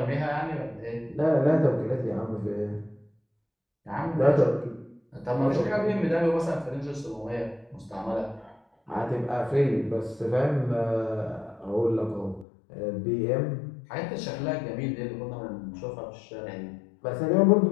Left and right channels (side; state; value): right; drops out; at 12.5 s